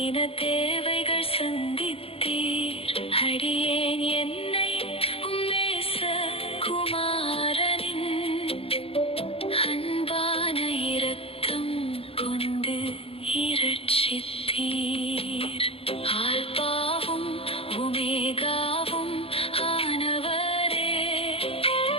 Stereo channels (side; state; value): right; late; 0.27 ms